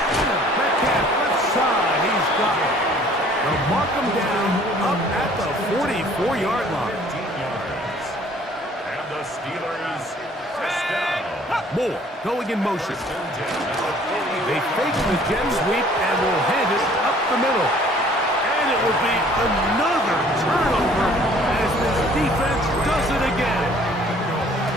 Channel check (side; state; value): both; normal; correlation 0.55